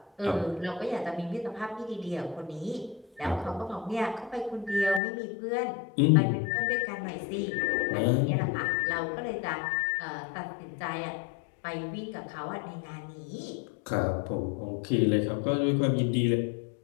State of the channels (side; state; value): right; drops out; at 5.0 s